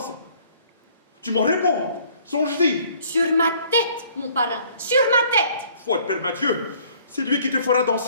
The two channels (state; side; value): inverted; both; correlation -0.58